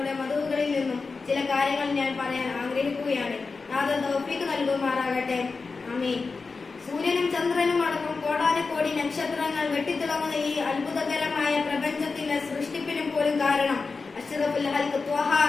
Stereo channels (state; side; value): quieter; right; 4.4 dB